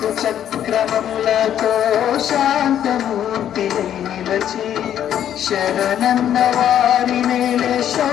చక్రములతో శాంతమూర్తి నిలచి శరణన్న వారి నేలే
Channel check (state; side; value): quieter; right; 10.3 dB